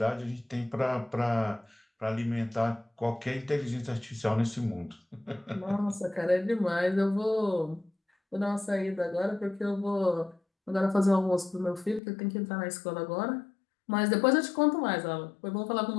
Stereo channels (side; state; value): right; drops out; at 12.0 s